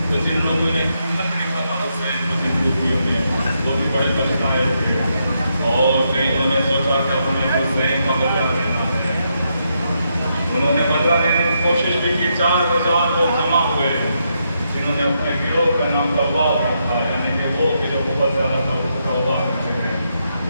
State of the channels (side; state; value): both; inverted; correlation -0.80